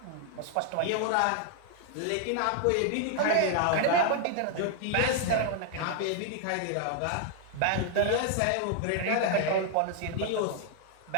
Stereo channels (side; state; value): both; different; correlation 0.00